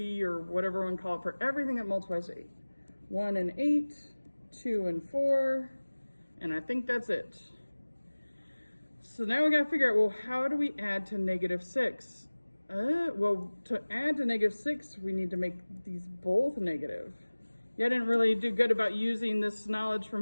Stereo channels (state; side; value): inverted; both; correlation -1.00